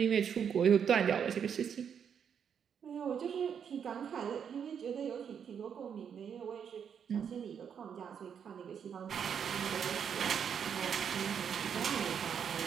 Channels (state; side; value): quieter; left; 7.6 dB